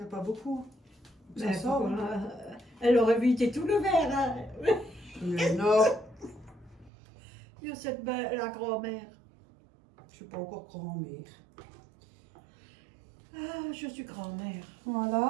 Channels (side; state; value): left; drops out; at 6.9 s